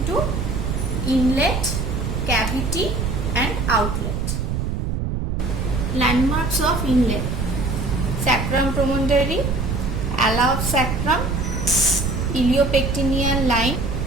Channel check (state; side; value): noise; right; rumble, 1 dB below the sound